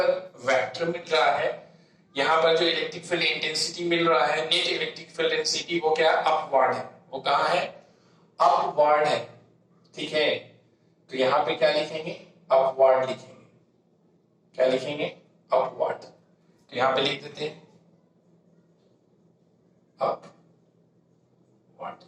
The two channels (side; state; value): both; identical; correlation 1.00